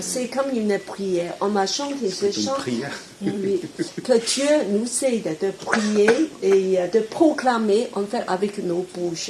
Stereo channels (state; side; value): identical; both; correlation 1.00